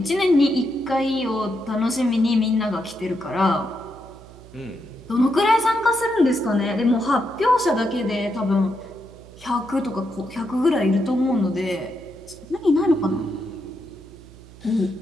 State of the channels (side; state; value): right; noise; hum, 20 dB below the sound